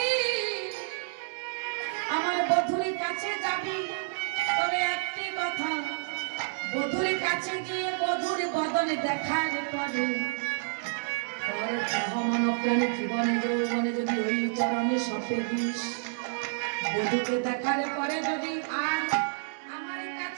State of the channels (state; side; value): silent; left; digital silence